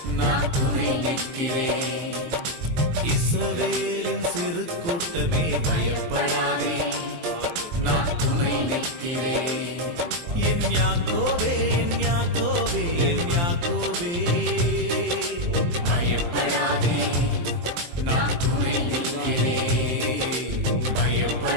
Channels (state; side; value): late; left; 23 ms